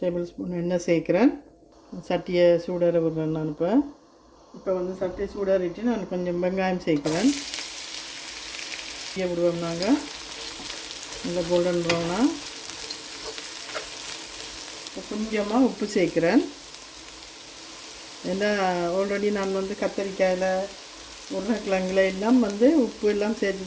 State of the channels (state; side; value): identical; both; correlation 1.00